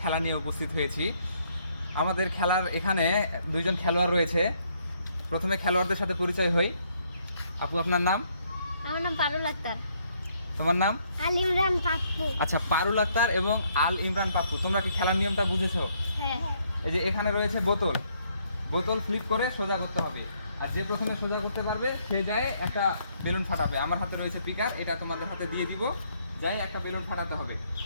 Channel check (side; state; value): both; inverted; correlation -0.70